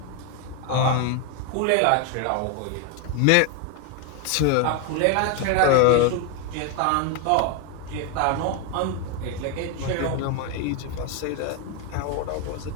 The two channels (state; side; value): different; both; correlation 0.01